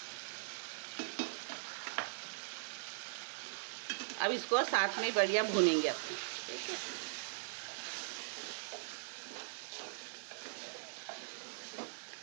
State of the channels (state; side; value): silent; left; digital silence